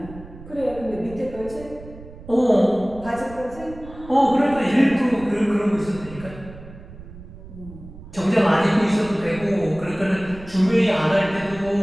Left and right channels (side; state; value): right; noise; rumble, 16 dB below the sound